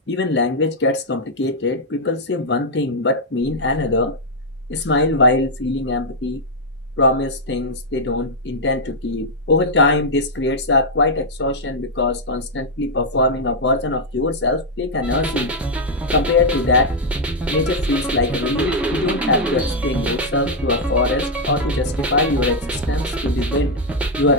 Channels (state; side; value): normal; both; correlation -0.02